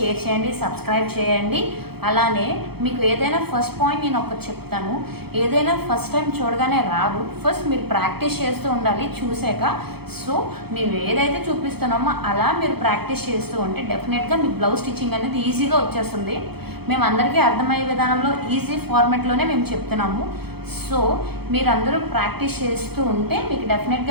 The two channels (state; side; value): late; left; 0.96 ms